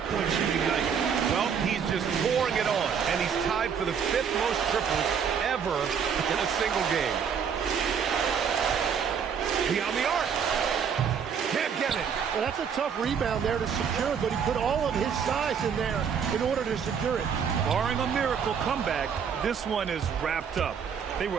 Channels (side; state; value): left; quieter; 7.1 dB